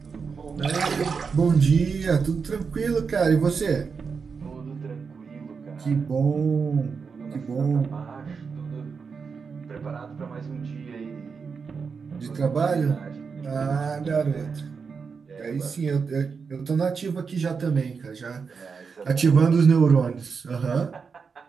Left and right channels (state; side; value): quieter; left; 5.5 dB